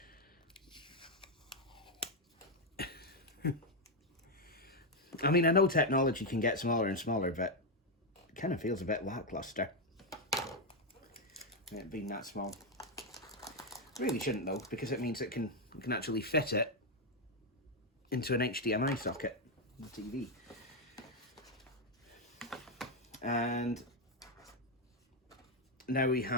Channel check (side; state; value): both; normal; correlation 0.03